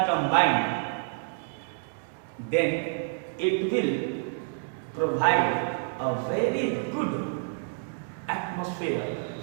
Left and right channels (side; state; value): left; silent; 59 dB below the other